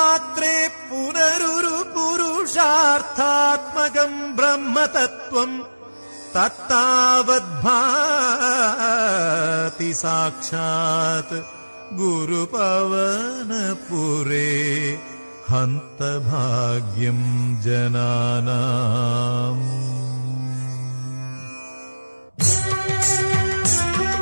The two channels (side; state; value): both; inverted; correlation -1.00